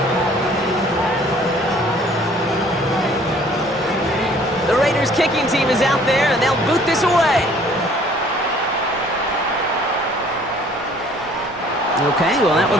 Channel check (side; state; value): both; normal; correlation 0.56